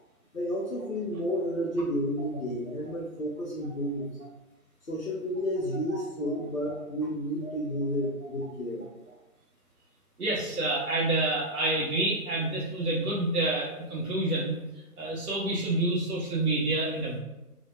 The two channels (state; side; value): normal; both; correlation 0.04